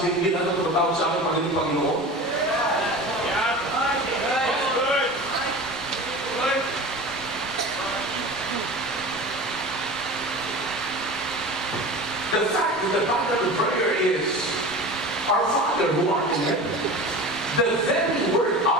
hindi natin tumatawag sa akin Panginoon? The fact of the pattern of prayer is, Our Father who art in heaven. The very word,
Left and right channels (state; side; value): normal; both; correlation 0.34